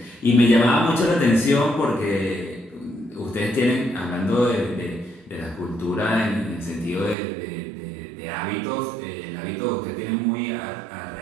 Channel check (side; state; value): left; drops out; at 7.2 s